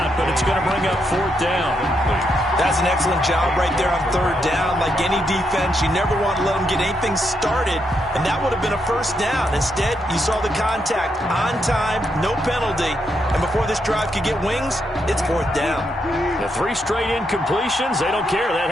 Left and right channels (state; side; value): normal; both; correlation 0.80